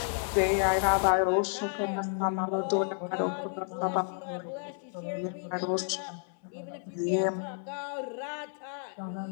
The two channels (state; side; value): silent; right; 57 dB below the other